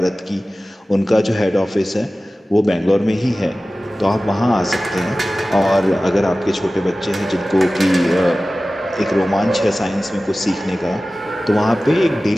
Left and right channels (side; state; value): both; normal; correlation 0.96